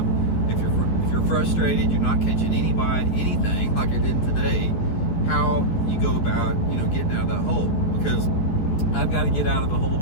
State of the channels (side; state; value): right; late; 11 ms